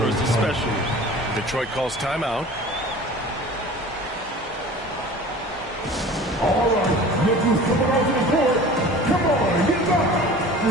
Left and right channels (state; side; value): normal; both; correlation 0.41